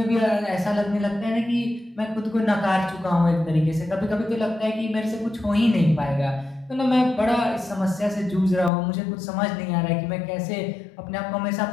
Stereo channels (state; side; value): drops out; right; at 8.7 s